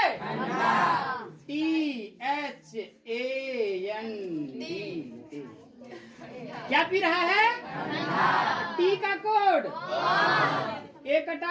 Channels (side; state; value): both; identical; correlation 1.00